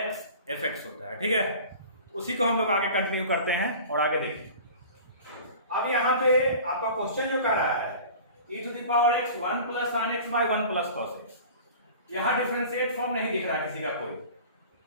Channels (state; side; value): inverted; both; correlation -0.40